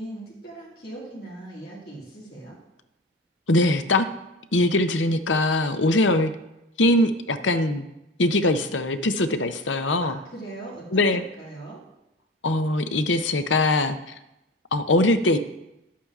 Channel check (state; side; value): normal; both; correlation 0.31